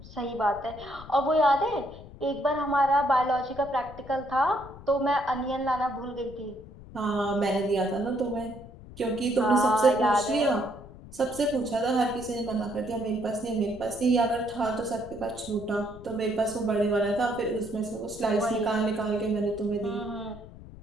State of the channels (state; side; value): noise; left; rumble, 17 dB below the sound